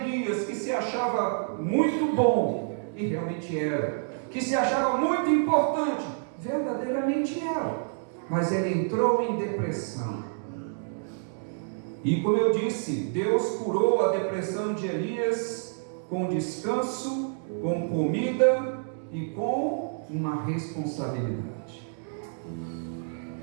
que se achava muito bom, e realmente era, que se achava muito importante, verdadeiramente era, mas ele entrou em depressão. E como eu disse, Deus curou a depressão de Elias com descanso, com comida e com uma responsabilidade.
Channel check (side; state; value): left; silent; digital silence